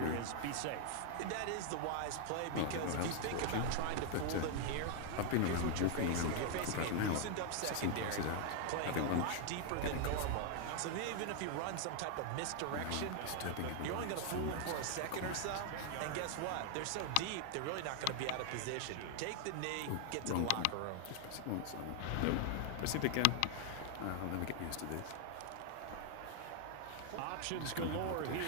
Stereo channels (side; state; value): both; different; correlation 0.00